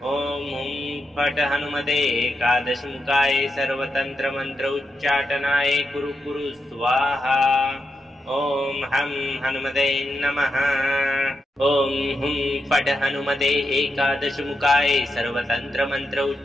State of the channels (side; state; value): both; normal; correlation 0.86